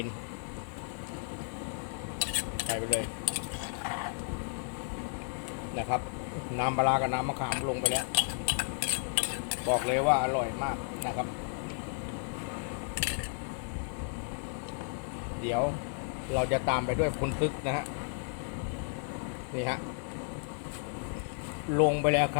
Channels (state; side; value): silent; right; 56 dB below the other